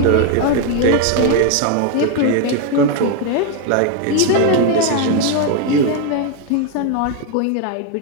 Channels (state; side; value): different; both; correlation 0.01